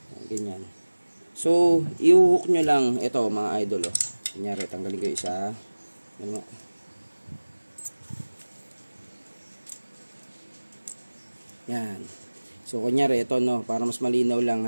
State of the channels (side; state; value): both; inverted; correlation -1.00